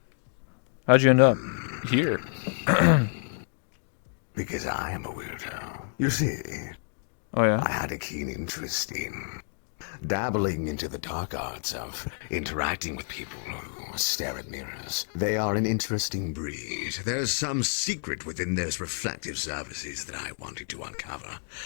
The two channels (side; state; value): right; silent; digital silence